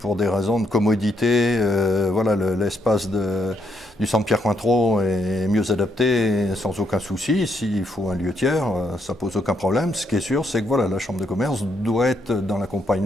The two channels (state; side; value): normal; both; correlation 0.76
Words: des raisons de commodité, l'espace du centre Pierre Cointreau est mieux adapté sans aucun souci. S'il faut un lieu tiers, ça pose aucun problème. Ce qui est sûr, c'est que la Chambre de commerce doit être dans